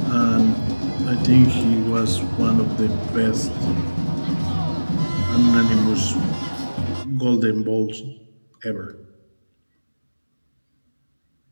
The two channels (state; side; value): inverted; both; correlation -1.00